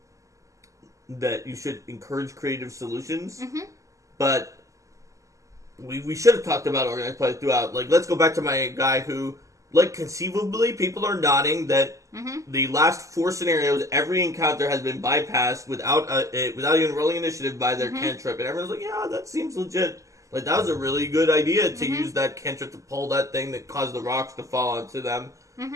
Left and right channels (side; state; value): left; late; 0.16 ms